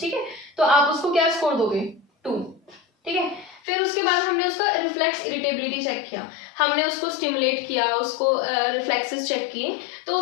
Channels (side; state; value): right; drops out; at 3.6 s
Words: ठीक है, तो आप उसको क्या स्कोर दोगे? 2। ठीक है, फिर उसके बाद हमने उसका रिफ्लेक्स इरिटेबिलिटी चेक किया, हमने उसको स्टिमुलेट किया, उसको रिफ्लेक्सेस चेक किए, तो